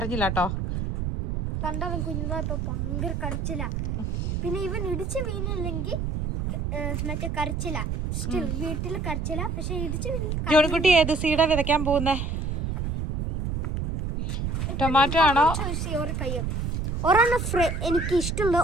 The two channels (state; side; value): noise; right; rumble, 2 dB below the sound